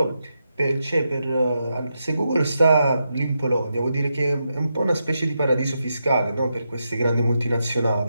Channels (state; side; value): inverted; both; correlation -0.85